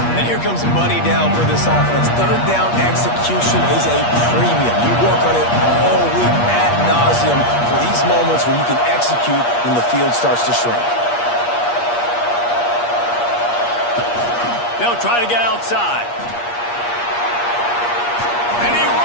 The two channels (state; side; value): late; right; 8.4 ms